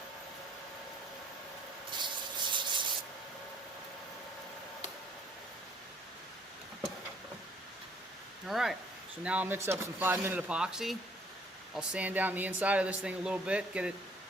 Alright, so now I'll mix up some 5-minute epoxy. I'll sand down the inside of this thing a little bit, get it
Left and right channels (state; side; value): normal; both; correlation 0.60